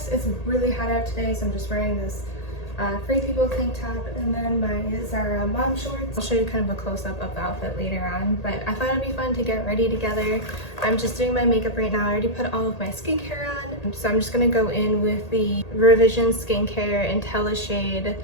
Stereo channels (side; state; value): right; late; 1.8 ms